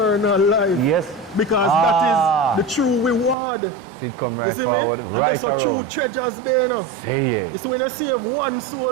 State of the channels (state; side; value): drops out; left; at 3.4 s